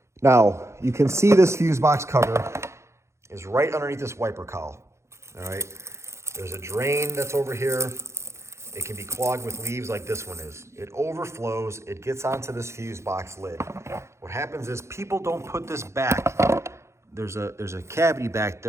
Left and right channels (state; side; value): late; left; 0.13 ms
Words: Now, you can see this fuse box cover is right underneath this wiper cowl, all right? There's a drain that's over here. it can be clogged with leaves like this one is. It overflows, it gets onto this fuse box lid. What happens is people don't put this back. There's a cavity back